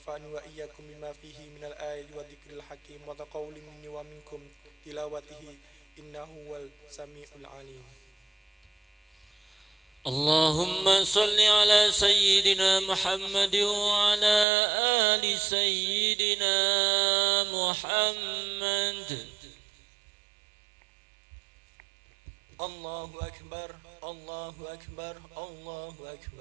وإياكم بما فيه من الآيات والذكر الحكيم وتقول مني ومنكم تلاوته إنه هو السميع العليم. اللهم صل على سيدنا محمد وعلى آل سيدنا محمد. الله أكبر الله أكبر الله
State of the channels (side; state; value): left; drops out; at 14.5 s